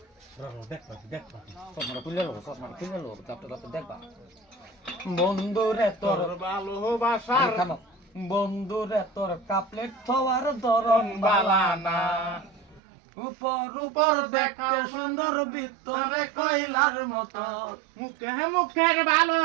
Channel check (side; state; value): left; drops out; at 12.8 s